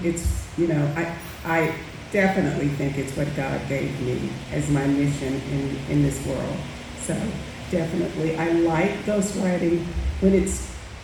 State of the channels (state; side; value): identical; both; correlation 1.00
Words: It's, I definitely think it's what God gave me as my mission in this world. So definitely, I like ghostwriting when it's